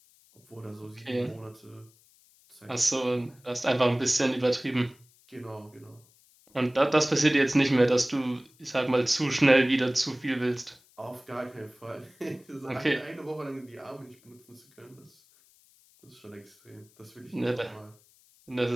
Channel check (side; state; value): left; noise; hiss, 30 dB below the sound